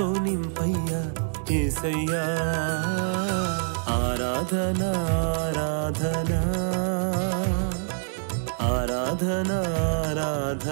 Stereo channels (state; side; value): silent; left; digital silence